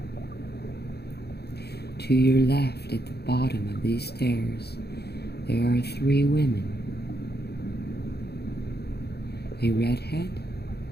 To your left, at the bottom of these stairs, there are three women. A redhead,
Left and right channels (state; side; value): late; right; 0.47 ms